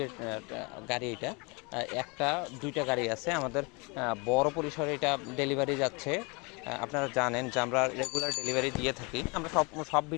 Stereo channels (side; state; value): right; quieter; 29.6 dB